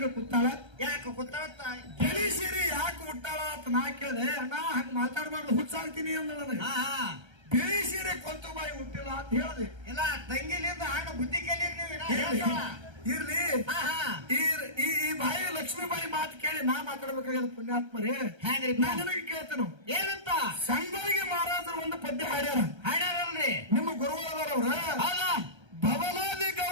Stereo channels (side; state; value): left; late; 1.3 ms